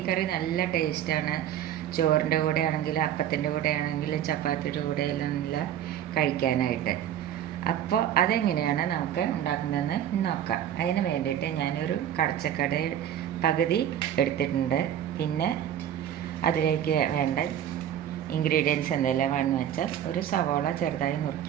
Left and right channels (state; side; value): quieter; left; 10.5 dB